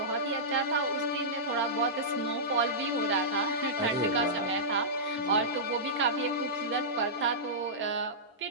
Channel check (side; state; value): both; normal; correlation -0.15